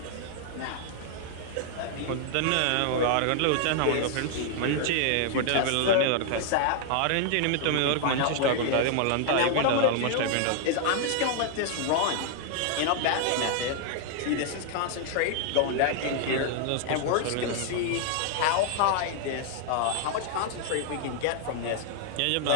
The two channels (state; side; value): different; both; correlation 0.00